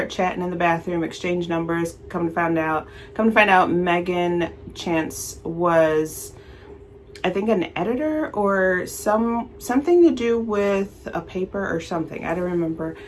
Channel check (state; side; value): identical; both; correlation 1.00